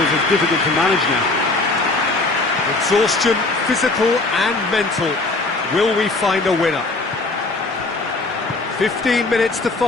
are difficult to manage now. Exhaustion, physical and mental. Will we find a winner? 15 minutes to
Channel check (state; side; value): quieter; right; 3.2 dB